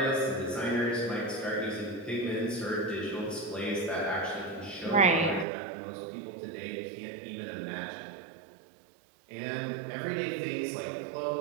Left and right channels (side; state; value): left; drops out; at 5.5 s